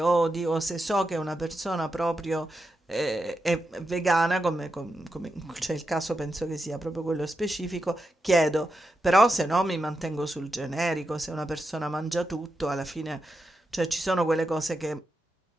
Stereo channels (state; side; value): normal; both; correlation 0.87